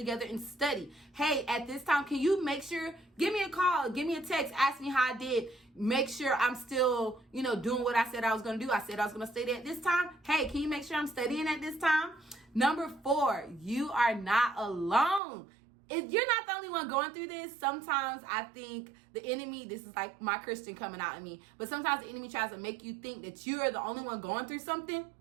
and study. Hey, at this time, can you make sure, give me a call, give me a text, ask me how I did. Make sure I'm still, doing what I said I was going to do. I said I was going to study at this time. Hey, can you make sure I'm studying at this time? Number 4, you are not alone. If you're not the only one going through this, sometimes I think the enemy, this is like my Christian coming out of me, but sometimes the enemy tries to make you think that you are the only one going through something.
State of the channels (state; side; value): drops out; left; at 15.2 s